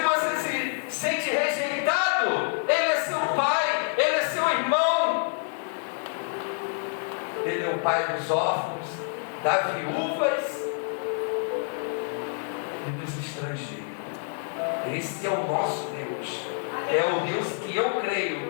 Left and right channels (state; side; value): silent; right; 56 dB below the other